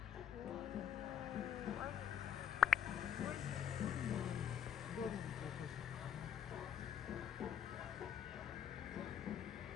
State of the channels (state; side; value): quieter; right; 9.1 dB